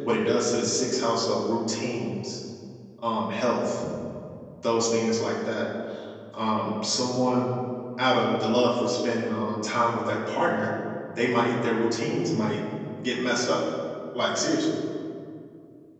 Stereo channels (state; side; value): identical; both; correlation 1.00